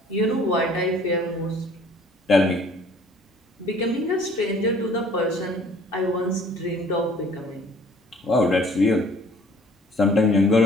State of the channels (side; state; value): both; normal; correlation 0.54